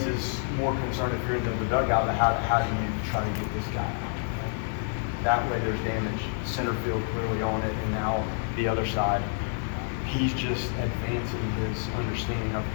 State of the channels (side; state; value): right; silent; 59 dB below the other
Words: more concern if you're in the dugout. How do you try to get this guy out? That way there's damage. Center field clearly on it, and now the other side. He's just advancing his understanding of